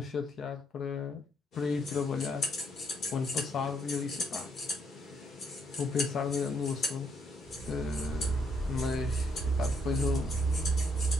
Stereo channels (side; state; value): both; normal; correlation 0.72